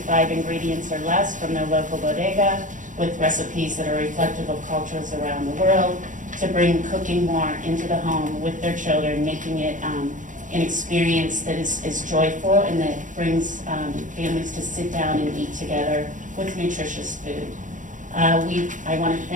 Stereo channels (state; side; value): late; left; 0.37 ms